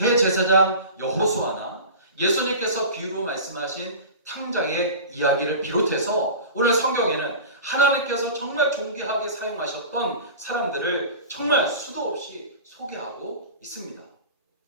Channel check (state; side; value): inverted; both; correlation -0.34